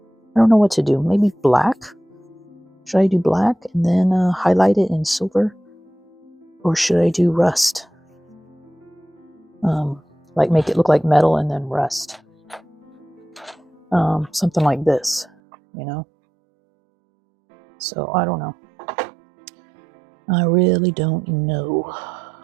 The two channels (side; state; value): left; drops out; at 15.3 s